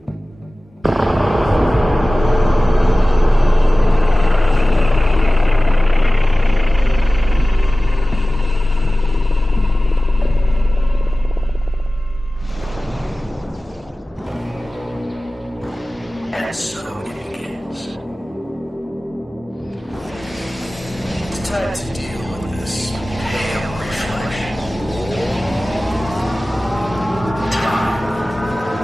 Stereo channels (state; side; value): normal; both; correlation 0.97